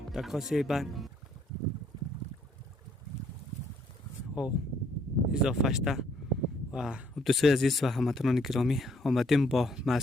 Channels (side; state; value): both; normal; correlation 0.67